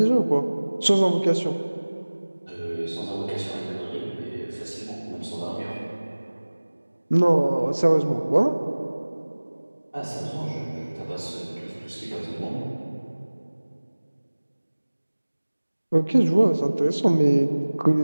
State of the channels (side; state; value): both; inverted; correlation -1.00